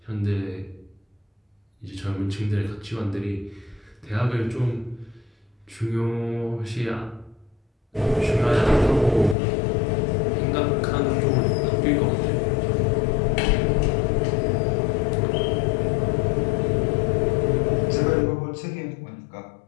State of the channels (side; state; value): right; drops out; at 9.3 s